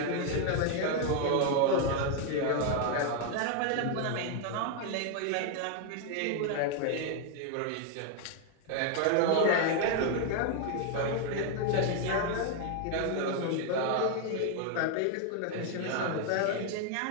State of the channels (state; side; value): different; both; correlation 0.00